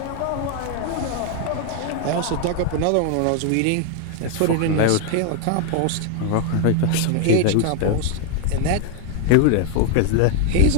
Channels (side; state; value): both; different; correlation 0.01